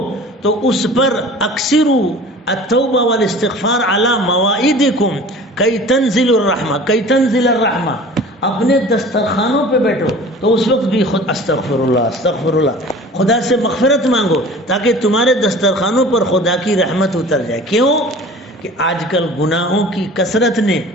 تو اس پر اکثروا التوبہ والاستغفار علی مواعیدکم کی تنزل الرحمہ، اپنے دسترخوانوں پہ بیٹھو تو اس وقت بھی خود استغفر اللہ خدا سے مغفرت مانگو تاکہ تمہارے دسترخوانوں پر خدا کی رحمت اتر جائے. کیوں کہ آج کل گناہوں کی کثرت نے،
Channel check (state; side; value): normal; both; correlation 0.43